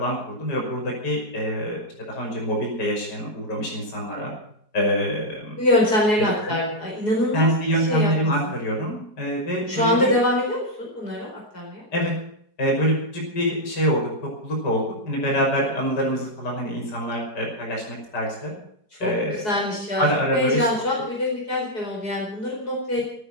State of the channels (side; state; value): right; late; 4.7 ms